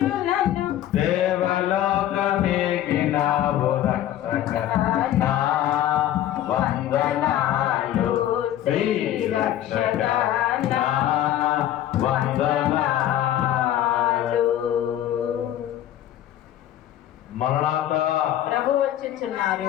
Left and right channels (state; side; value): quieter; right; 12.2 dB